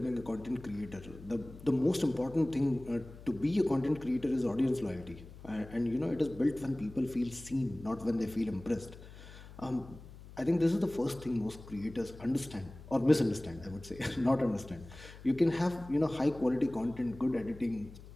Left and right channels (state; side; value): noise; left; hum, 17 dB below the sound